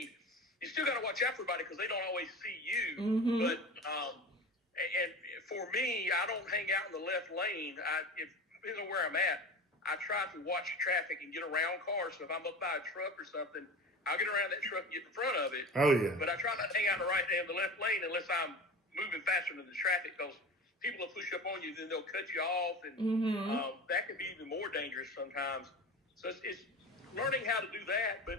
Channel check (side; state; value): both; normal; correlation 0.32